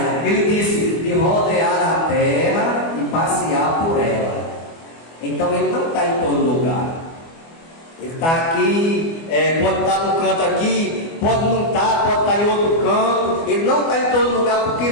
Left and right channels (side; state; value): right; late; 24 ms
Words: Ele disse: de rodear a terra e passear por ela. Então ele não está em todo lugar. Ele está aqui, pode estar no canto aqui, pode não estar, pode estar em outro canto. Ele não está em todo lugar porque